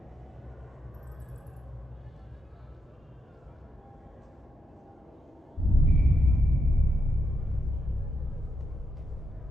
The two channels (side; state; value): both; normal; correlation 0.82